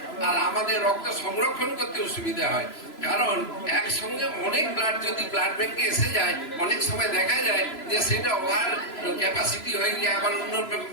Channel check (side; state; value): right; late; 3.0 ms